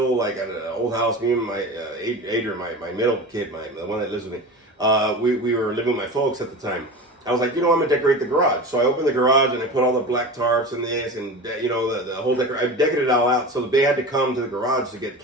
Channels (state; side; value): normal; both; correlation 0.31